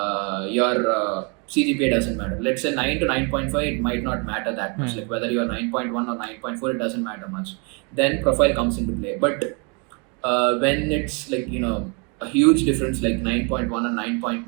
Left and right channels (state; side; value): quieter; left; 34.2 dB